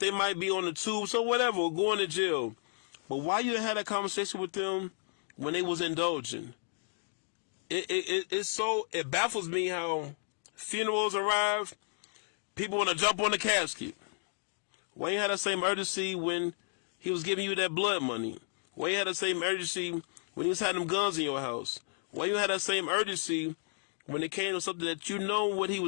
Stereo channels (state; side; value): silent; right; 56 dB below the other